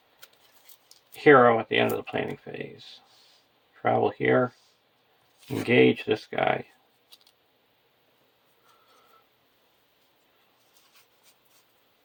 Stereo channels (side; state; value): both; identical; correlation 1.00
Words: hero at the end of the planning phase. Travel here. Engage this guy.